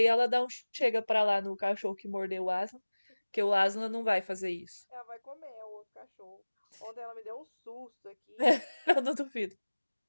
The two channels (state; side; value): inverted; both; correlation -1.00